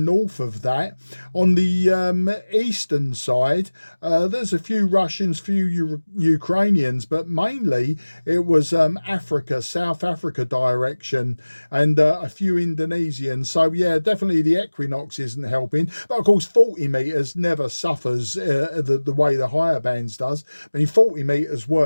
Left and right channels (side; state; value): both; inverted; correlation -1.00